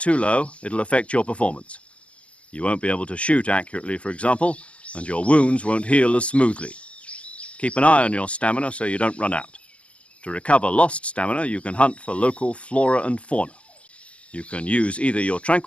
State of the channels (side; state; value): right; late; 0.062 ms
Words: low, it'll affect your performance. You won't be able to shoot accurately, for example, and your wounds won't heal as smoothly. Keep an eye on your stamina so you don't run out. To recover lost stamina, you can hunt for local flora and fauna. You can use either your